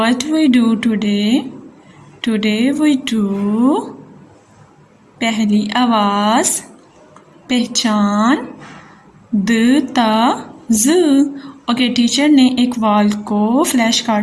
we do today? Today we do पहली आवाज, पहचान, the ता ज। Okay, teacher ने एक wall को flash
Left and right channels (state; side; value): identical; both; correlation 1.00